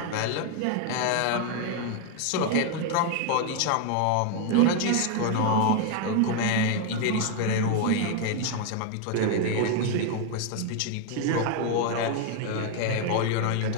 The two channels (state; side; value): different; both; correlation 0.01